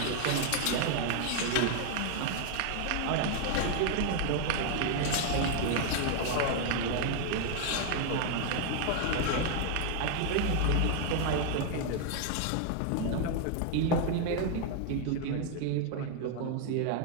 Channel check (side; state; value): both; different; correlation 0.00